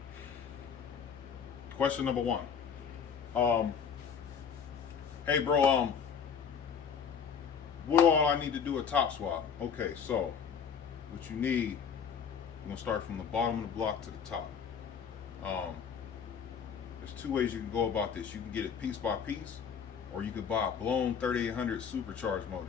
Question number one. Um, hey bro, what all I need to do a top swap? Okay, so what you need, I'm gonna start from the bottom of the block to the top. Um, there's two ways you can go about this. You can get it piece by piece, or you could buy a blown 3800 supercharged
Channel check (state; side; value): quieter; right; 7.0 dB